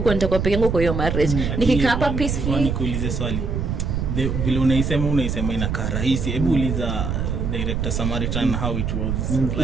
nitakuwa peke yangu kwa hiyo marriage. Nikikaa hapa peacefully. Nikuulize swali. Vile unaisema inakaa rahisi. Hebu uliza director Samaritan how it was.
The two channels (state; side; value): noise; right; rumble, 1 dB below the sound